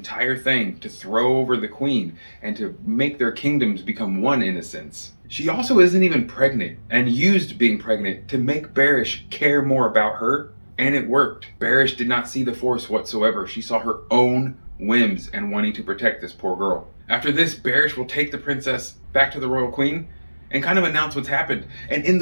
thing to throw over the queen and to make their kingdoms become one in a sense, she also isn't even pregnant and used being pregnant to make Barish care more about her, and it worked. Barish did not see the Force whatsoever. She saw her own whims and wanting to protect this poor girl. After this, Barish will take the princess back to the royal queen and kind of announce what's happened. And in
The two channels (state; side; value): inverted; both; correlation -1.00